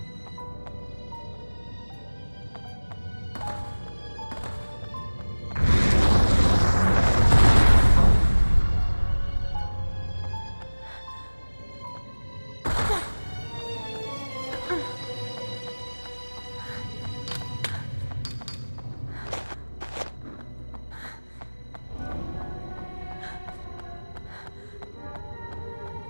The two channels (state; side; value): inverted; both; correlation -1.00